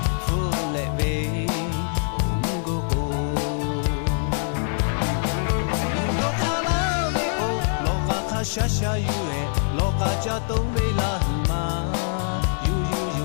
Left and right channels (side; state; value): right; silent; 63 dB below the other